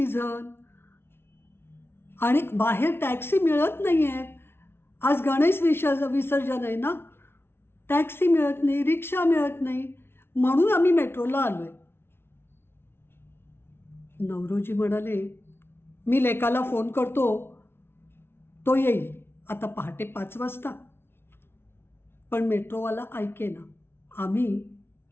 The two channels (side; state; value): right; late; 0.12 ms